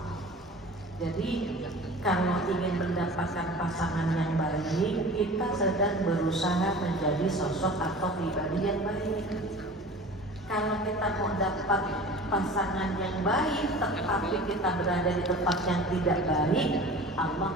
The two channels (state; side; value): normal; both; correlation 0.39